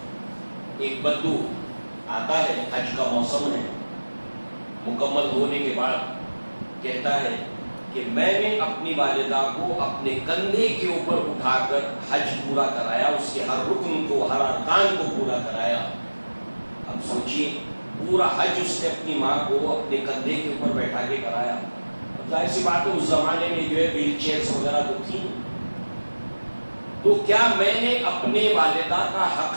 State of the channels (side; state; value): both; inverted; correlation -1.00